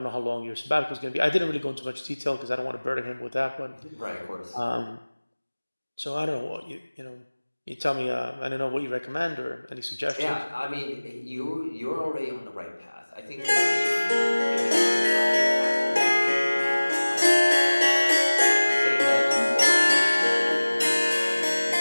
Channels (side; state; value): both; inverted; correlation -1.00